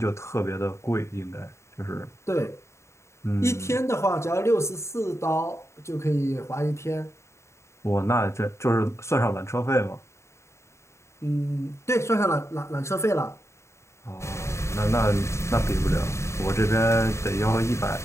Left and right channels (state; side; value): late; right; 0.14 ms